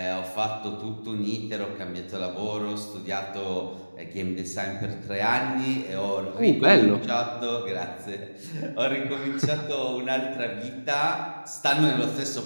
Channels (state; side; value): inverted; both; correlation -1.00